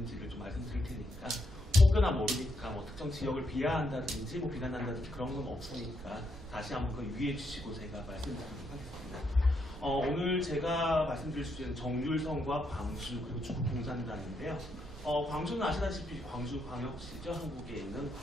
좀 말씀드릴 테니까 혹여나 모르니까 뭐 특정 지역을 비하한다든지 뭐 비난한다든지 그런 건 없으니까 다시 한번 그 유의해 주시고 제가 말씀드리도록 하겠습니다. 오늘 제가 말씀드릴 주제는 정률성과 광주 그리고 중국공산당인데요. 광주는 아시다시피 광주광역시죠. 한국에 있는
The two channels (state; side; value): normal; both; correlation 0.78